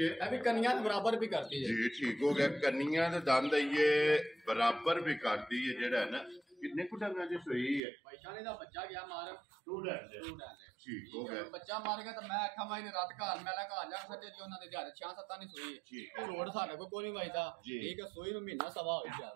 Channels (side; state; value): left; drops out; at 7.8 s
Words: ਇਹ ਵੀ ਕੰਨੀਆਂ ਦੇ ਬਰਾਬਰ ਵੀ ਕਰਦੀ ਹੈ ਜੀ। ਠੀਕ ਹੋ ਗਿਆ। ਕੰਨੀਆਂ ਦੇ ਦੰਦ ਇਹ ਬਰਾਬਰ ਵੀ ਕਰਦੀ ਹੈ ਜਿਹੜਾ ਹੈ ਨਾ। ਕਿੰਨੇ ਕੁ ਡੰਗਾਂ ਦੀ ਸੂਈ ਹੈ? ਪੈਸਾ ਨੇ ਦਾ ਬੱਚਾ ਗਿਆ ਮਾਰ ਸਟੂਡੈਂਟ ਠੀਕ ਹੋ ਗਿਆ। ਬੱਚਾ ਮਾਰ ਗਿਆ ਤਾਂ ਮੈਂ ਆਖਾਂ ਮਾਈ ਨੇ ਰਾਤ ਘਰ ਮੈਲਾ ਘਰ ਜਾ ਸਕਦੇ ਜੀ ਉਹਨਾਂ ਦੇ ਦਿਹਾੜੇ 6-7 ਨਹੀਂ ਸੋਈ ਠੀਕ ਹੈ। ਰੋਡ ਸਾਡੇ ਕੋਲ ਕੋਈ ਨਹੀਂ ਵਜਦਾ ਠੀਕ ਹੈ। ਸੋਈ ਨੂੰ ਮਹੀਨਾ ਸਵਾ ਹੋ ਗਿਆ।